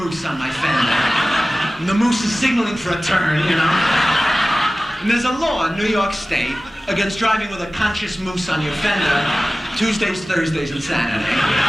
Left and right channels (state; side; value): normal; both; correlation 0.97